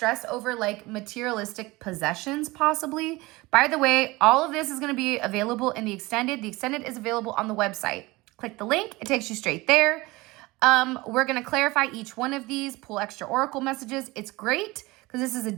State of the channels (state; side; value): quieter; left; 21.6 dB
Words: over like materialistic possessions possibly. By the way, all of this is going to be available in the extended. The extended is available on the website. Click the link. It takes you straight there. We're going to clarify each one of these, pull extra oracle messages. It's great because this is a